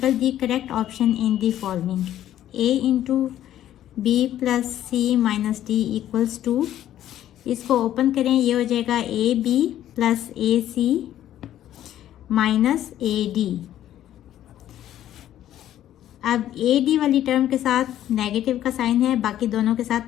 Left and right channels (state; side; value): quieter; right; 12.1 dB